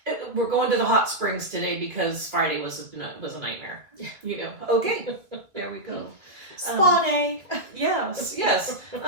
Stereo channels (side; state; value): left; late; 2.3 ms